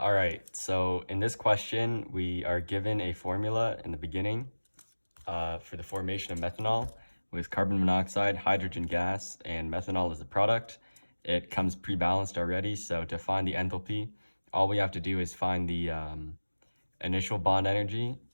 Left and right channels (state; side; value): inverted; both; correlation -1.00